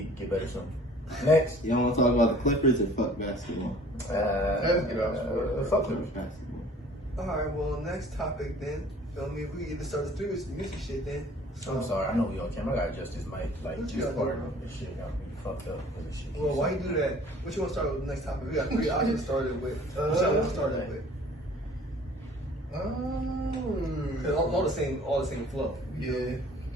get better soon. Next. Y'all want to talk about the Clippers or fuck basketball? Let's get off sport. Fuck it. Basketball. Alright, well, next topic then. Feel me? We either start the music shit then. So, I'm sorry, I know we on camera. I gotta adjust this mic. Like What you this gotta part do, of this shit got me fucked up with this shit. well, why you do that? What you want to start with the next topic? We got 3 options started with. What y'all want to start it with? Cause all the same flow. Yeah.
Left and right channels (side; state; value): both; normal; correlation 0.51